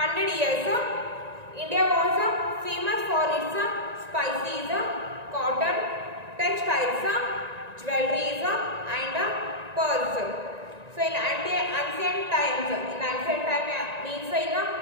years, India was famous for its spices, cotton, textiles, jewelries and pearls. So in ancient times, means in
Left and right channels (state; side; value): late; left; 1.9 ms